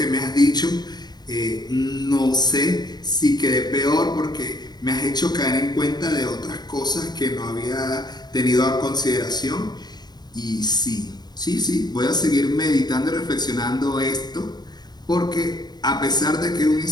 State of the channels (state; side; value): late; right; 0.20 ms